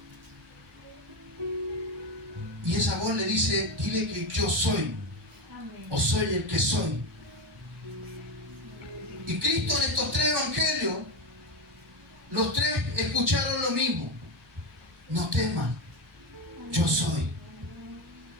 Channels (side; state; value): both; normal; correlation 0.14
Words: Y esa voz le dice, dile que yo soy, o soy el que soy. Y Cristo en estos tres evangelios, los tres escucharon lo mismo. No teman, yo soy.